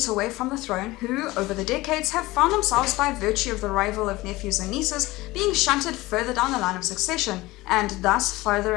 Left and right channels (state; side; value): quieter; right; 19.7 dB